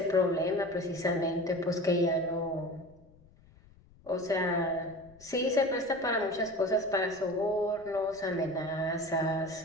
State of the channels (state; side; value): noise; left; rumble, 26 dB below the sound